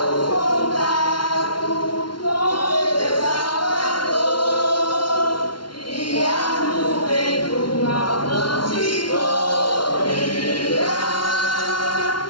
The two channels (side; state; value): right; late; 0.72 ms